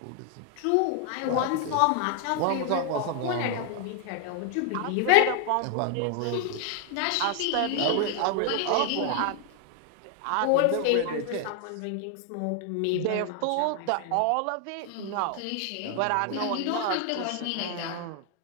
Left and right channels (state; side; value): different; both; correlation 0.00